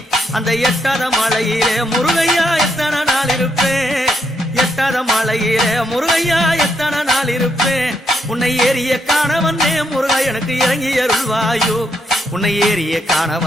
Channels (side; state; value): both; normal; correlation 0.78